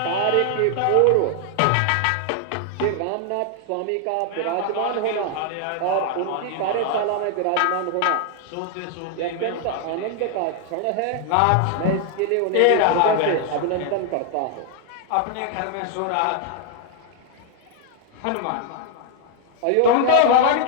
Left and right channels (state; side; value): different; both; correlation 0.00